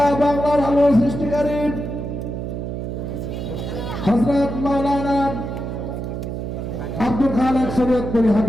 বাংলার আলোর সৃষ্টিকারী হযরত মাওলানা আব্দুল খালেক শরীয়তপুরী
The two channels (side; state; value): right; noise; hum, 5 dB below the sound